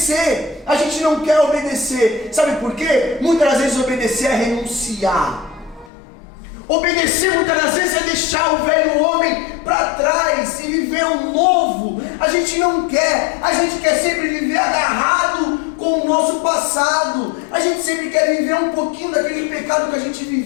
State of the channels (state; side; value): drops out; right; at 5.9 s